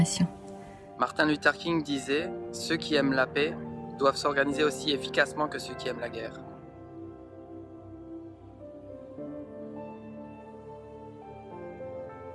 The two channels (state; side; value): identical; both; correlation 1.00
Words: Martin Luther King disait « Ceux qui aiment la paix doivent s'organiser aussi efficacement que ceux qui aiment la guerre ».